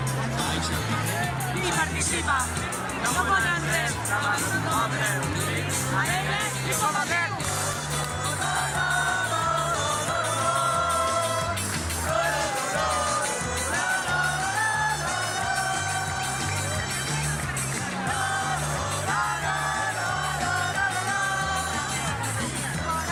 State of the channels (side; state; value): both; identical; correlation 1.00